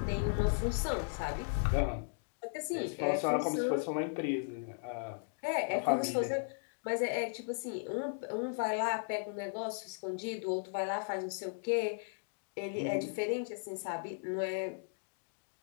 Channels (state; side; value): silent; right; digital silence